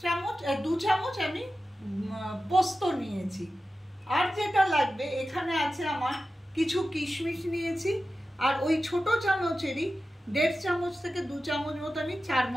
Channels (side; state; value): both; normal; correlation 0.93